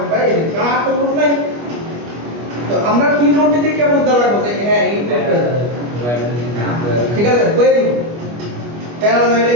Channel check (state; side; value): late; left; 25 ms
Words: বাই কার তো প্রুফ নাই। তো আমরা কি নোট দিয়ে কি বুঝতে লাগবে যে হ্যাঁ এই প্রুফটা, ঠিক আছে, কই দিব প্যারালাল ওয়্যার